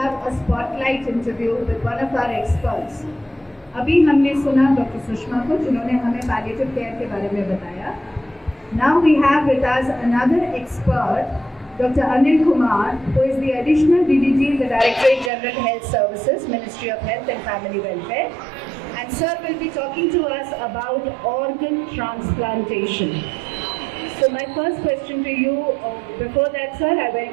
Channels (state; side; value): drops out; left; at 15.3 s